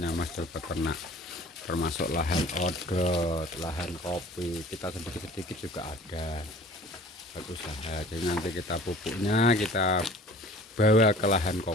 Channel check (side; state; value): both; normal; correlation 0.47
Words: Mas Dul Peternak, termasuk lahan odot, lahan kopi, kita sedikit-sedikit juga ada berusaha. Jadi nanti kita pupuknya kita bawa ke lahan